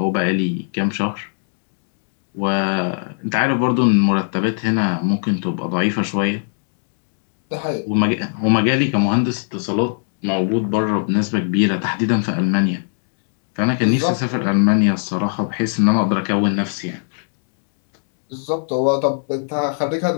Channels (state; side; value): silent; right; digital silence